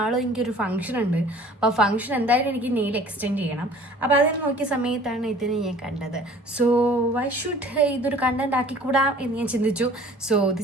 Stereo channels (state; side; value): normal; both; correlation 0.49